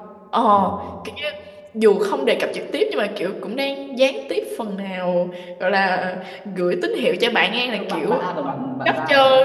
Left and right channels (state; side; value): identical; both; correlation 1.00